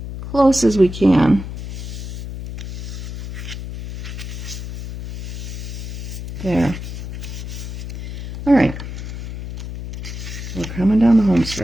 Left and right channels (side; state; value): left; noise; hum, 8 dB below the sound